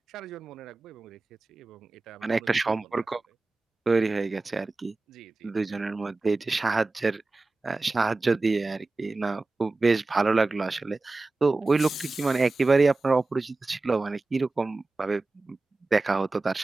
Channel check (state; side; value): quieter; left; 3.3 dB